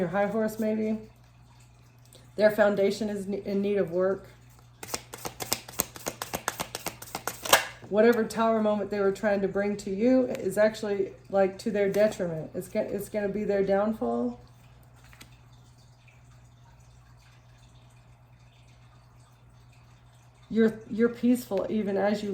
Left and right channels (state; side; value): identical; both; correlation 1.00